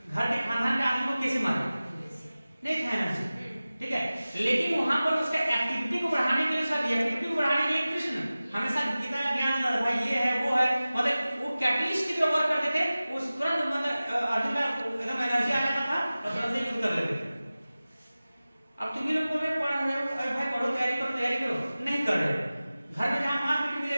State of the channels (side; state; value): both; inverted; correlation -0.97